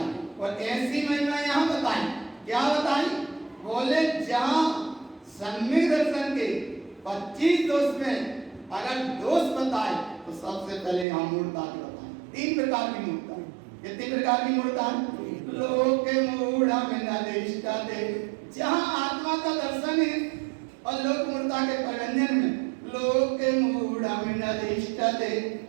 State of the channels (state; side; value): drops out; left; at 11.1 s